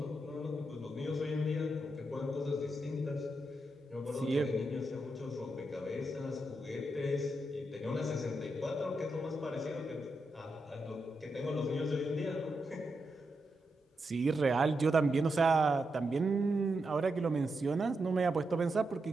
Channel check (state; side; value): normal; both; correlation 0.85